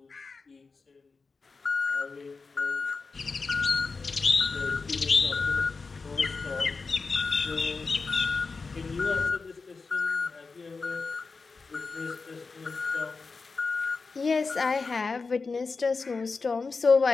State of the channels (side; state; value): right; quieter; 4.4 dB